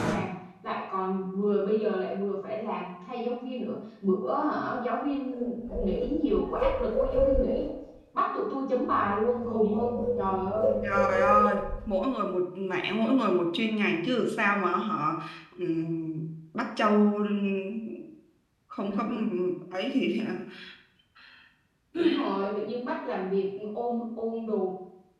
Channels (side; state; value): both; identical; correlation 1.00